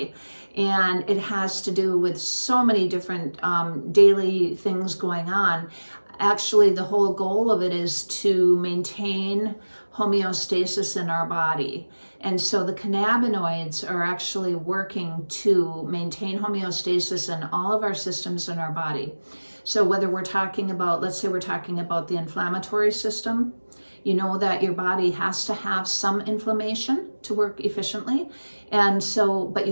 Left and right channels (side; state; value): both; inverted; correlation -1.00